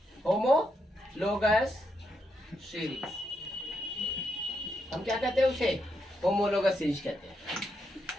homologous series हम क्या कहते हैं, उसे homologous series कहते हैं।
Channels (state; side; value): normal; both; correlation 0.81